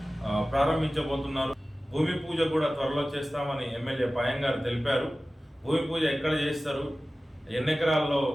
ప్రారంభించబోతున్నారు. భూమి పూజ కూడా త్వరలో చేస్తామని ఎమ్మెల్యే పాయం గారు తెలిపారు. భూమి పూజ ఎక్కడ చేస్తారు, ఎన్ని ఎకరాల్లో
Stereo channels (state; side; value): normal; both; correlation 0.96